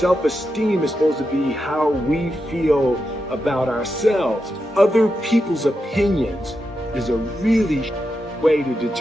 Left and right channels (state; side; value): normal; both; correlation 0.87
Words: is supposed to be how we feel about ourselves. Other people's opinions is a really way to